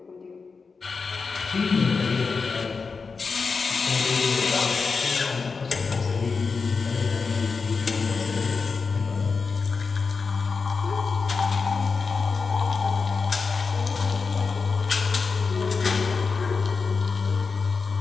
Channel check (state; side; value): quieter; right; 4.8 dB